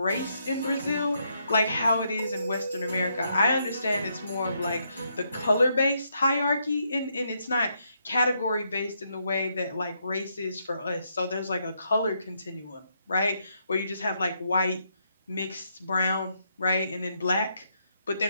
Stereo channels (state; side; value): inverted; both; correlation -0.77